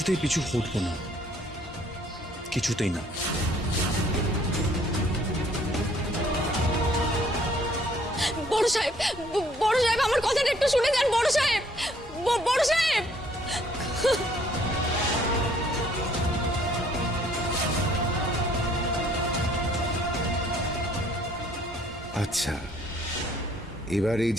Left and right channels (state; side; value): normal; both; correlation 0.62